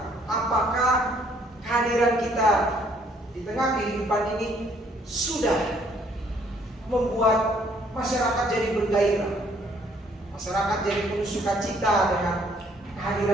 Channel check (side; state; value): both; normal; correlation 0.64